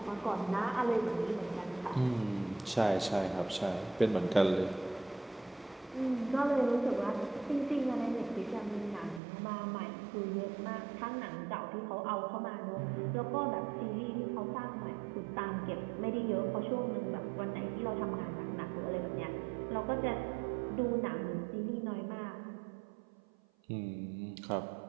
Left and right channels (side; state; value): left; drops out; at 9.2 s